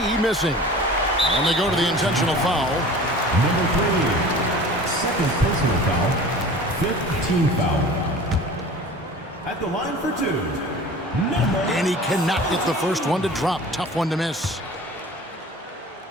missing. And they go to the intentional foul. Number 3, second personal foul, 5th team foul. At the line for 2, number... And he cannot get the first one to drop. Tough one to miss.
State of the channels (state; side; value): normal; both; correlation 0.41